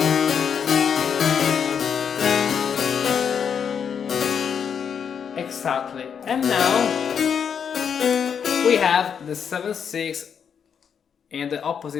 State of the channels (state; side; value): quieter; right; 7.3 dB